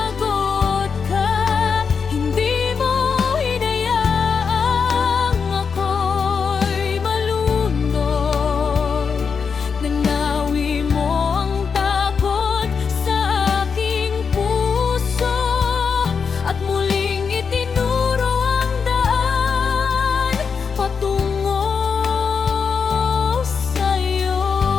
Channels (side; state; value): right; quieter; 5.9 dB